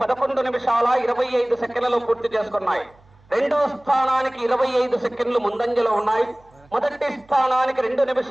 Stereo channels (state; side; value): noise; right; hum, 29 dB below the sound